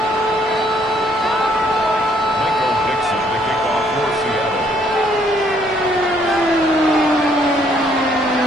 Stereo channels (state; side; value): normal; both; correlation 0.66